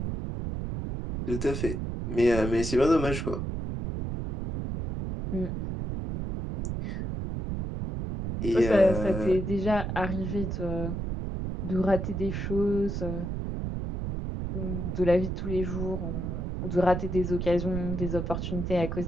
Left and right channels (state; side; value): noise; right; rumble, 3 dB below the sound